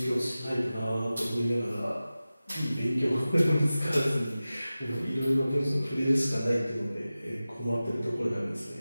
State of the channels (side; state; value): both; inverted; correlation -0.96